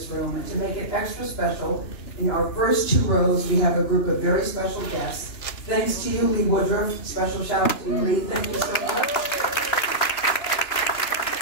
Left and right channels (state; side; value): late; right; 2.9 ms